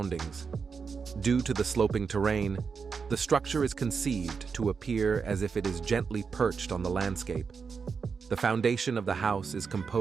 Due to the sloping terrain, the structure is conceived to appear as if it is gently perched on the landscape. The foundation of the house is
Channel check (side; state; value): left; quieter; 5.6 dB